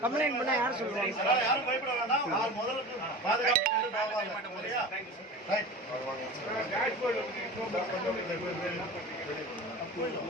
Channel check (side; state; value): both; normal; correlation 0.34